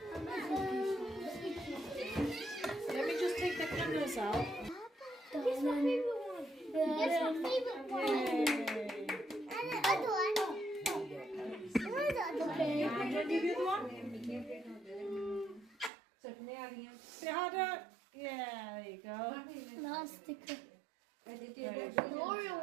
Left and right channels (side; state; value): left; drops out; at 15.9 s